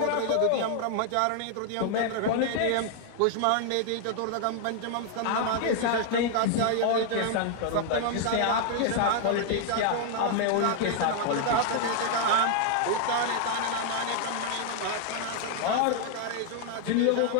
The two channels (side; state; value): both; different; correlation 0.00